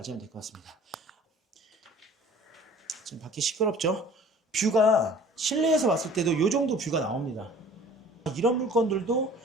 될 것 같습니다. 지금 밖에 시끄럽죠? 뷰가 실내에서 봤을 때도 이 정도 뷰가 나옵니다. 이런 물건들도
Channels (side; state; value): both; normal; correlation 0.48